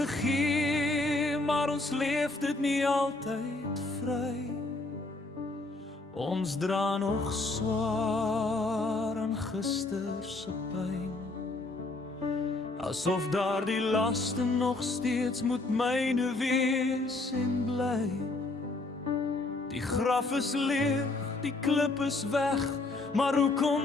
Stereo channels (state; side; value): quieter; right; 3.1 dB